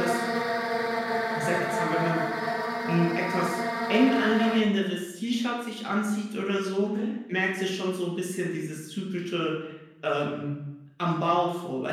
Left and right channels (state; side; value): identical; both; correlation 1.00